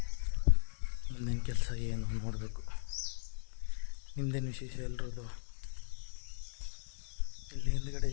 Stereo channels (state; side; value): silent; right; 53 dB below the other